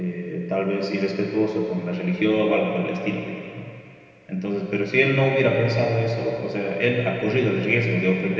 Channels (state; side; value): identical; both; correlation 1.00